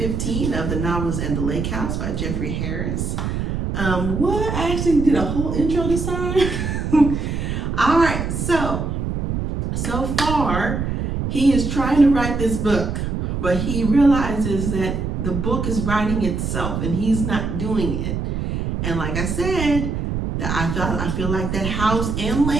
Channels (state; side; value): noise; right; rumble, 2 dB below the sound